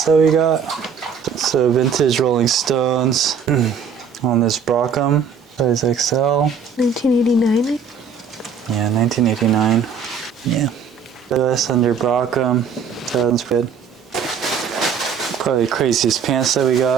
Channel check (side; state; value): left; quieter; 6.2 dB